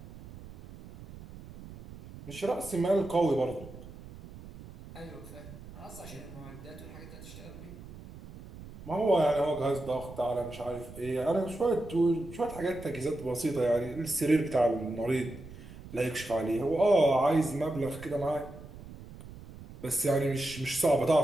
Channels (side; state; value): right; noise; rumble, 16 dB below the sound